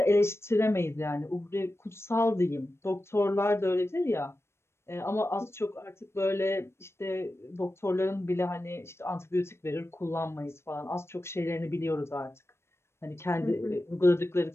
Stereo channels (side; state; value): right; late; 0.12 ms